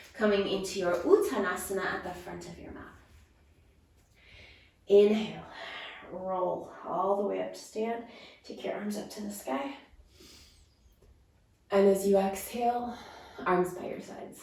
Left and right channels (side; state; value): both; identical; correlation 1.00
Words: coming into your Uttanasana at the front of your mat. Inhale, roll all the way up to stand. Take your arms up to the sky. And as you exhale, arms by your sides.